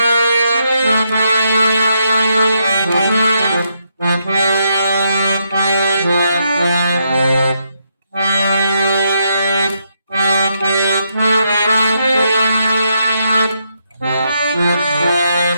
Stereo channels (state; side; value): inverted; both; correlation -0.78